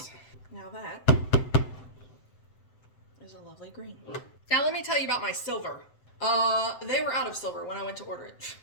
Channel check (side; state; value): right; late; 7.7 ms